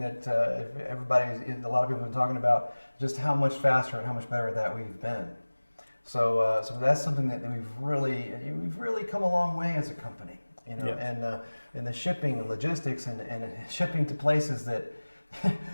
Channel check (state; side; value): inverted; both; correlation -1.00